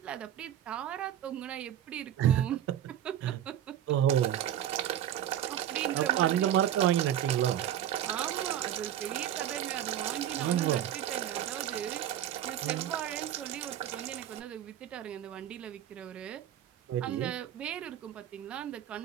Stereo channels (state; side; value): quieter; left; 11.1 dB